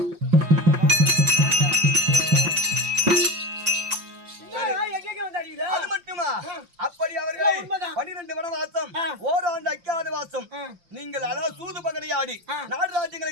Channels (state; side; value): late; left; 5.7 ms